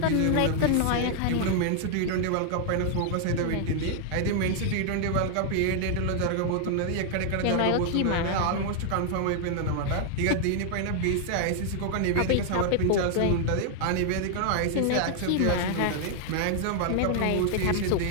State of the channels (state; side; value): different; both; correlation 0.00